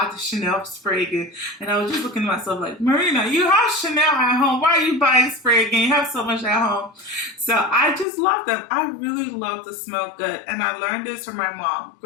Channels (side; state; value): right; drops out; at 8.1 s